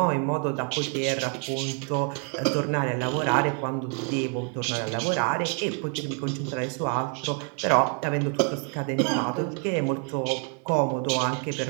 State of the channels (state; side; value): quieter; left; 38.6 dB